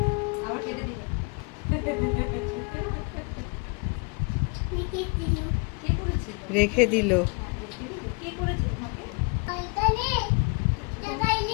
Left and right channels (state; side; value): quieter; right; 32.0 dB